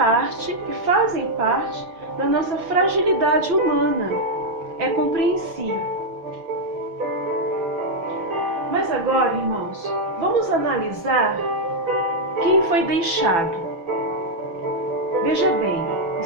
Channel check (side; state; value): left; late; 6.0 ms